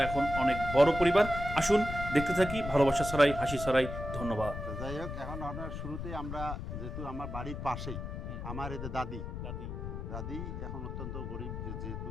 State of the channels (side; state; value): left; noise; rumble, 6 dB below the sound